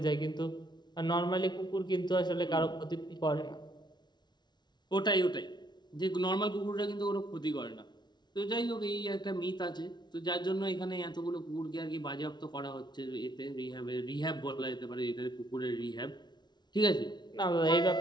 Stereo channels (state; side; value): late; right; 0.21 ms